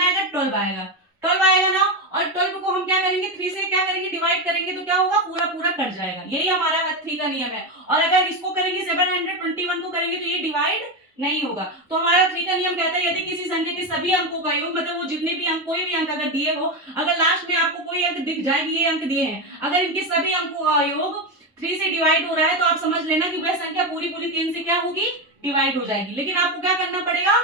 आएगा 12 आएगा, 12 आएगा ना। और 12 को हम क्या करेंगे, करेंगे 3 से क्या करेंगे डिवाइड करेंगे तो क्या होगा पूरा पूरा कट जाएगा। यही हमारा 3 का नियम है। और अगर इसको करेंगे 721 को करेंगे तो ये डिवाइड नहीं होगा। तो हमारा 3 का नियम कहता है यदि किसी संख्या के सभी अंकों का योग, मतलब वो जितने भी अंक, कोई भी अंक अगर दिए हो, अगर लास्ट में आपको कोई अंक दिख जाए ये अंक दिए हैं, अगर इनके सभी अंकों का योग 3 से डिवाइड हो रहा है तो आप समझ लेना कि वह संख्या पूरी पूरी 3 से क्या होगी डिवाइड हो जाएगी। लेकिन आपको क्या करना पड़ेगा,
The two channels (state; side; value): normal; both; correlation 0.12